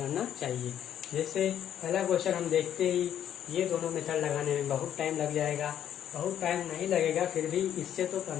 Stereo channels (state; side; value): quieter; right; 10.2 dB